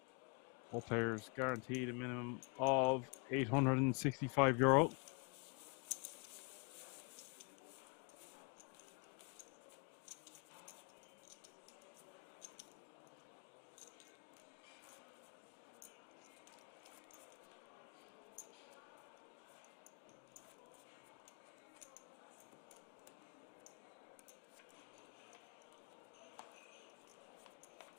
All players guaranteed a minimum of €865.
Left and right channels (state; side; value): quieter; right; 34.0 dB